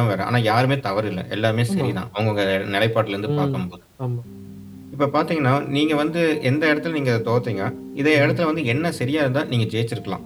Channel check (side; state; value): both; identical; correlation 1.00